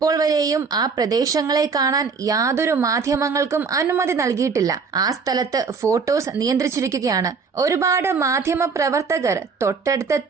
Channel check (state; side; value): quieter; left; 5.2 dB